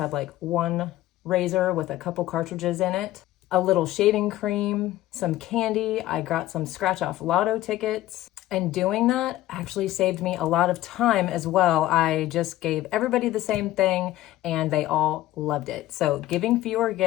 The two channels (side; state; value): right; quieter; 15.1 dB